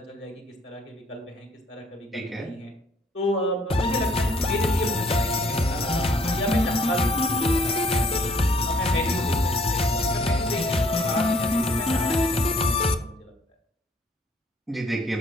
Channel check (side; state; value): both; normal; correlation 0.62